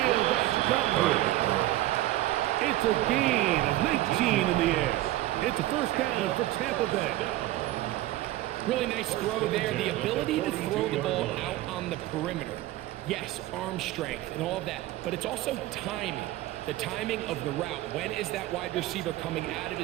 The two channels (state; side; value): quieter; left; 16.0 dB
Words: That's Godwin. It's a gain of 19 in the air. It's a 1st down for Tampa Bay. Really nice throw there. The ability to throw the ball out on the perimeter. Yes, arm strength and all of that, but it's also timing. The timing of the route. When is that wide receiver coming out of